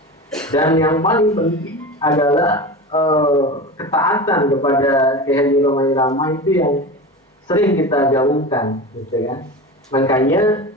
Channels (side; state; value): both; normal; correlation 0.29